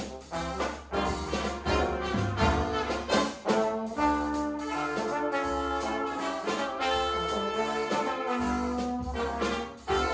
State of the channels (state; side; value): identical; both; correlation 1.00